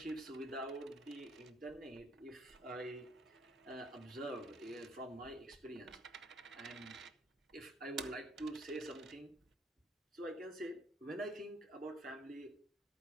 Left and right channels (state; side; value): normal; both; correlation 0.63